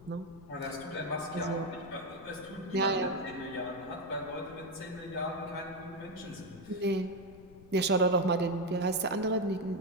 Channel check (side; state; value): left; noise; rumble, 20 dB below the sound